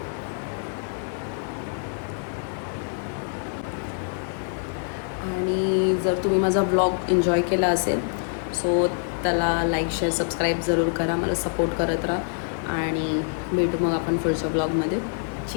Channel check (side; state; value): right; silent; 61 dB below the other